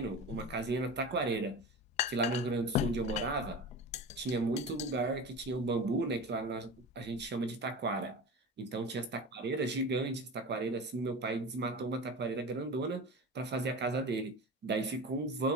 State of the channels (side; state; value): both; normal; correlation 0.30